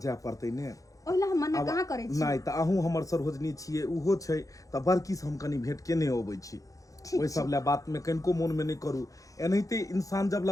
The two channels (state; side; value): late; right; 0.16 ms